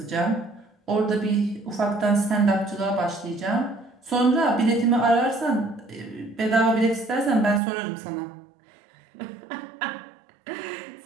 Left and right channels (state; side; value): drops out; left; at 7.6 s